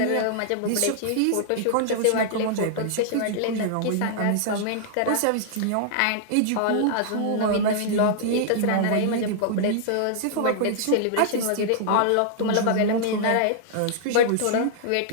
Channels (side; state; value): both; different; correlation -0.01